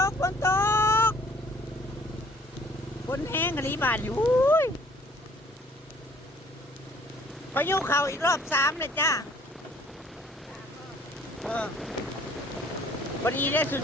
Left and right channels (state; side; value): normal; both; correlation 0.57